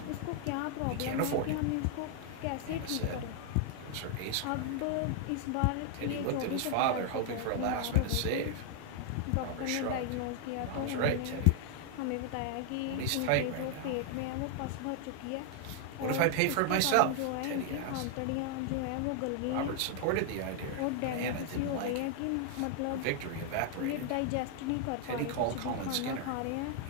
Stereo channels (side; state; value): both; different; correlation 0.00